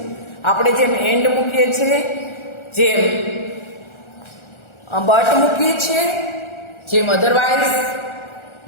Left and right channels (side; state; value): right; late; 1.4 ms